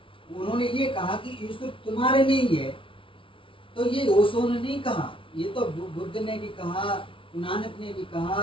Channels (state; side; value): late; right; 0.25 ms